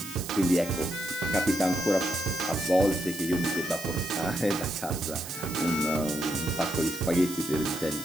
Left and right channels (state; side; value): noise; right; hiss, 11 dB below the sound